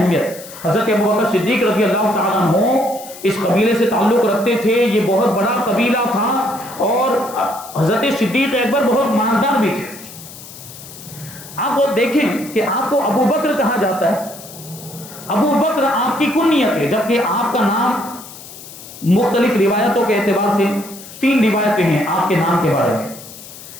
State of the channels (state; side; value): noise; left; hiss, 16 dB below the sound